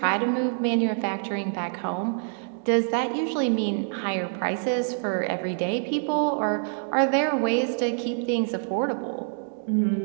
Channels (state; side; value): silent; left; digital silence